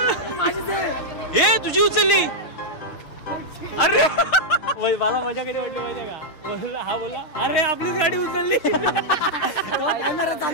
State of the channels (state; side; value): late; right; 6.6 ms